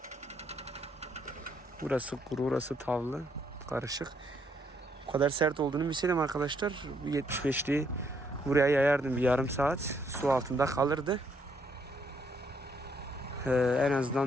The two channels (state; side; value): normal; both; correlation 0.71